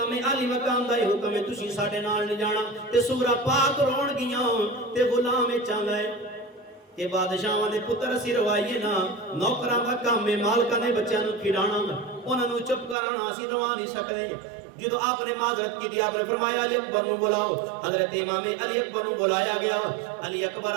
अली मकाम दा हुक्म है, तुसीं साडे नाल नहीं जाना, ते सुगरा पाक रोण गियां ते गुलाम चाहता है कि बादशाहां दे पुत्र असीं रवाइए ना, नौकरां दा काम है मालकां दे बच्चों नु खिलाना, उन्हां नु चुप कराना, असीं रवा नहीं सकदे। जो आपने माजरत की थी, आपने फरमाया अली अकबर नु बुलाओ। हजरत इमाम अली अकबर नु बुलाया गया। अली अकबर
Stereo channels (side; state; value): left; drops out; at 13.0 s